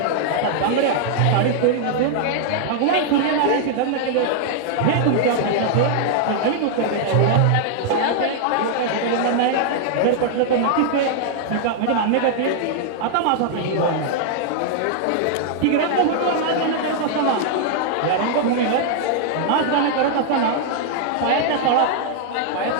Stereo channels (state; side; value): different; both; correlation -0.01